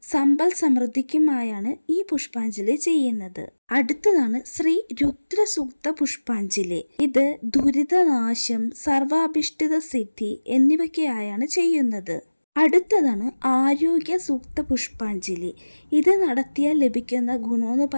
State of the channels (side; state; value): both; inverted; correlation -1.00